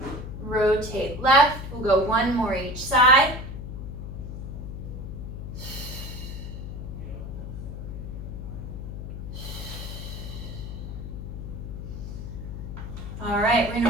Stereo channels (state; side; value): noise; left; hum, 7 dB below the sound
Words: Rotate left. We'll go one more each side. All right, we're